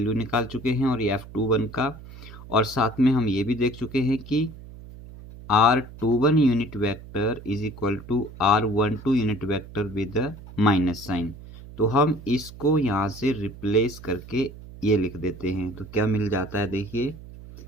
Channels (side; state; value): right; noise; hum, 16 dB below the sound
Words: निकाल चुके हैं और ये F21 का, और साथ में हम ये भी देख चुके हैं कि R21 unit vector is equal to R12 unit vector with minus sign. तो हम इसको यहाँ से रिप्लेस करके ये लिख देते हैं, तो क्या मिल जाता है, देखिए,